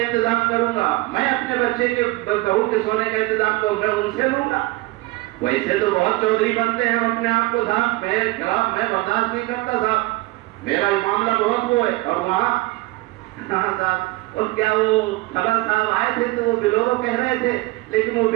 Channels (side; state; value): left; quieter; 21.2 dB